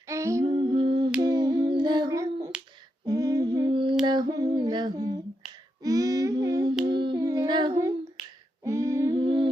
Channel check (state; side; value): normal; both; correlation 0.84